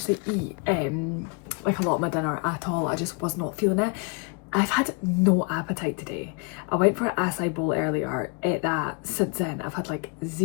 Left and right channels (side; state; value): right; quieter; 34.2 dB